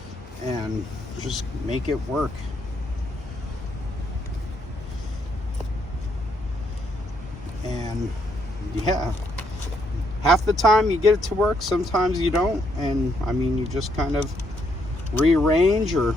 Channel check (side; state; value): both; normal; correlation 0.74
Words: and just make it work. And yeah, half the time you get it to work, sometimes you don't. And I mean, you just kind of rearrange or